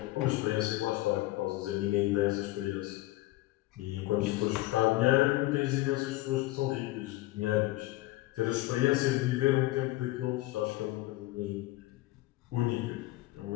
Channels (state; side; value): quieter; right; 18.3 dB